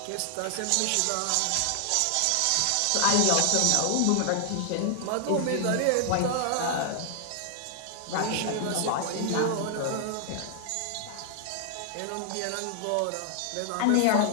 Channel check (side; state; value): both; different; correlation 0.00